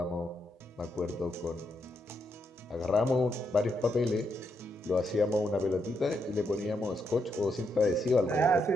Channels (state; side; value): normal; both; correlation 0.80